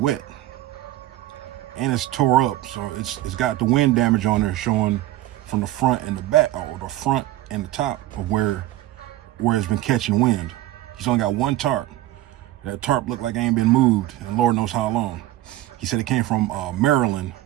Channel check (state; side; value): quieter; left; 15.3 dB